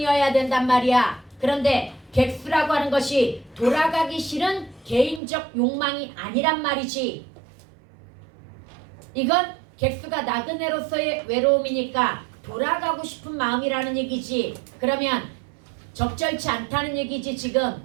된단 말이야. 그런데 객수라고 하는 것이 돌아가기 싫은 개인적 욕망이 아니란 말이지. 이건 객수가 나그네로서의 외로움이니까 돌아가고 싶은 마음이라는 얘기지. 그러면 적절치 않다는 얘기지. 지금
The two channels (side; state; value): left; drops out; at 5.2 s